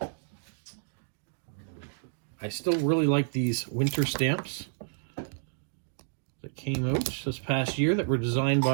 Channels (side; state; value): left; silent; digital silence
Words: I still really like these winter stamps that came out this past year that were designed